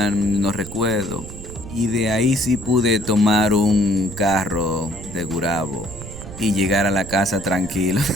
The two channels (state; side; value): noise; right; rumble, 13 dB below the sound